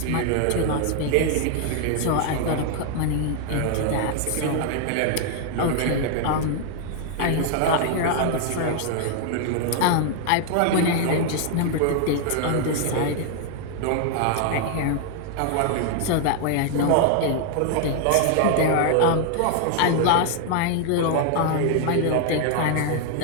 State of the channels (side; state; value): both; different; correlation 0.00